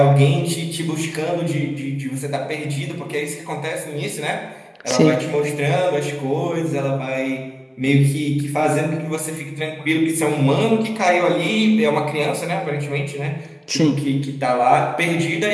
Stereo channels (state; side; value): identical; both; correlation 1.00